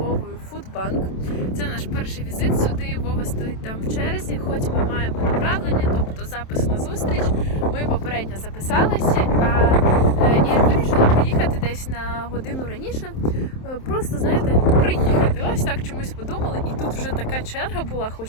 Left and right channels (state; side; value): late; right; 27 ms